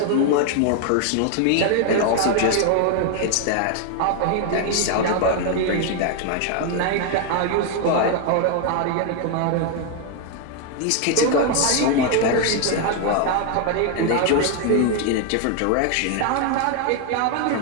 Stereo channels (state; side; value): different; both; correlation 0.01